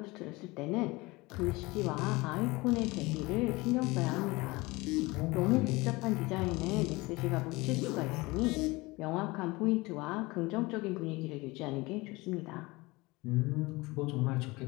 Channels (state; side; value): quieter; right; 22.7 dB